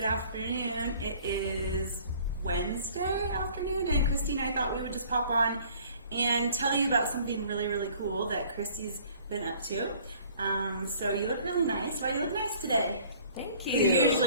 afternoon. It is Wednesday afternoon, and Christy and I thought we would just pop on and tell you about something really, really cool that Christy's been up to. So you look really nice. Why do you look nice today? Thank you. You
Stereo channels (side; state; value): both; inverted; correlation -0.53